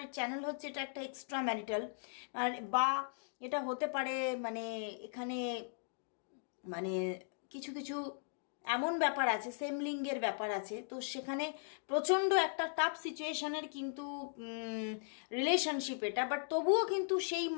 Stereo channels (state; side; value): silent; right; digital silence